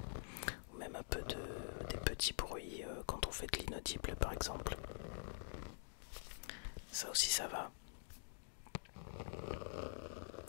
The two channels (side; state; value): right; silent; digital silence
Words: Ou même un peu des petits bruits quand on fait de l'inaudible par exemple. Ça aussi ça va.